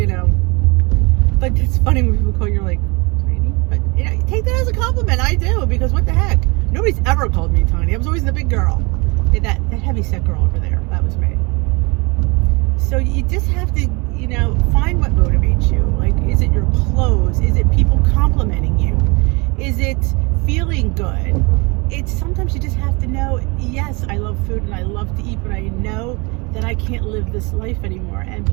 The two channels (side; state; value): left; quieter; 27.9 dB